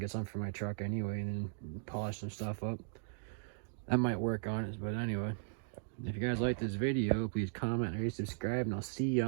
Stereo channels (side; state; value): left; silent; digital silence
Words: some for my truck anyway, and then polish some stuff up. That might work on it, but anyway. If you guys like this video, please comment, rate, subscribe, and I'll see you